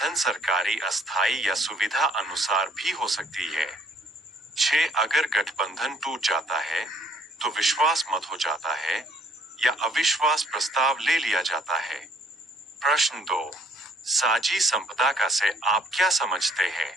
सरकारी अस्थायी या सुविधा अनुसार भी हो सकती है। छह अगर गठबंधन टूट जाता है तो विश्वास मत हो जाता है या अविश्वास प्रस्ताव ले लिया जाता है। प्रश्न 2, साझी संपदा का से आप क्या समझते हैं?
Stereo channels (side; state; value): both; normal; correlation 0.61